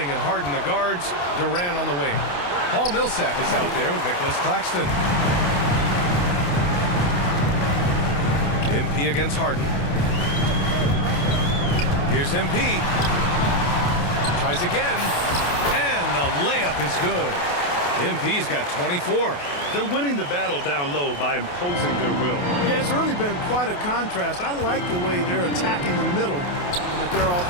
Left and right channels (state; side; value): late; right; 28 ms